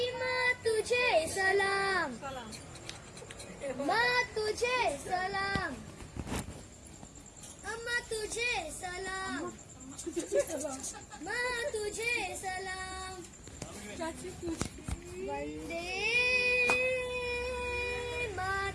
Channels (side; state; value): both; identical; correlation 1.00